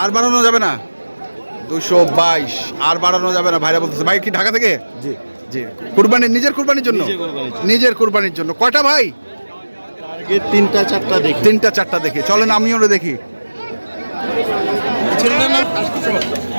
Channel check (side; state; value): both; inverted; correlation -1.00